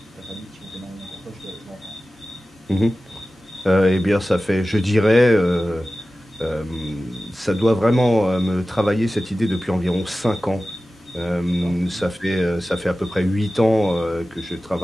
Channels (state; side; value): normal; both; correlation 0.95